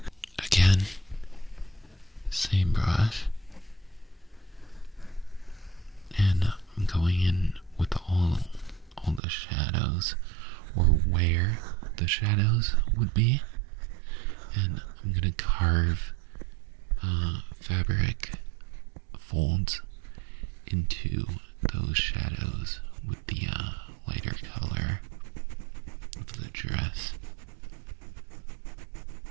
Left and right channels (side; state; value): left; drops out; at 9.2 s